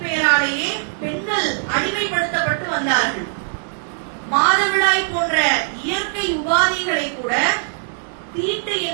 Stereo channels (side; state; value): left; silent; 65 dB below the other